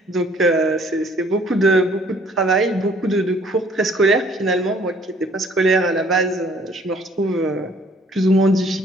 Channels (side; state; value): both; normal; correlation 0.59